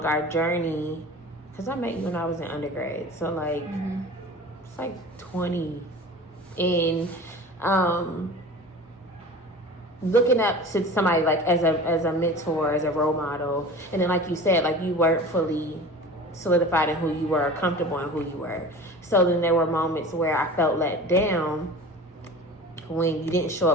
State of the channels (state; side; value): normal; both; correlation 0.38